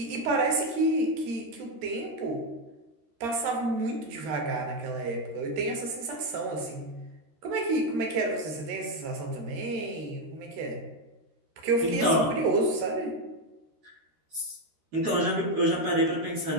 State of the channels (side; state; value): left; late; 13 ms